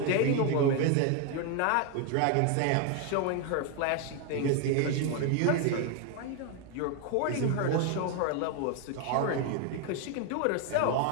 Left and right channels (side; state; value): both; different; correlation 0.01